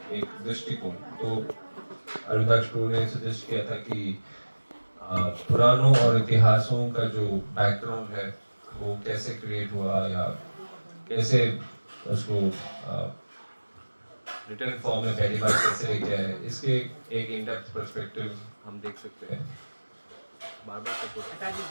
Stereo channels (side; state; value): both; inverted; correlation -1.00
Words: एक दृष्टिकोण तो अरुणदास टू ने सजेस्ट किया था कि पुराणों और इतिहासों का जो बैकग्राउंड है वो कैसे क्रिएट हुआ या कैसे उसको रिटर्न फॉर्म में पहली बार कैसे लेके आए, इसके एक इन डेप्थ पर्सपेक्टिव हम देख सकते हैं। बार बार हटा